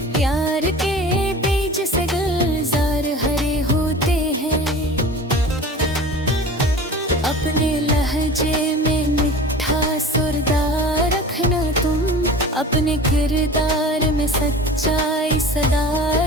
प्यार के बीज से गुलजार हरे होते हैं। अपने लहजे में मिठा सुरदार रखना तुम, अपने किरदार में सच्चाई सदा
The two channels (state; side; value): normal; both; correlation 0.38